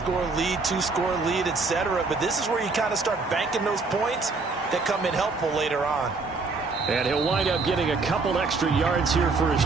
lead, 2-score lead, etc. But this is where you kind of start banking those points that come in helpful later on. And he'll wind up getting a couple extra yards here for his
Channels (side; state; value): left; quieter; 4.0 dB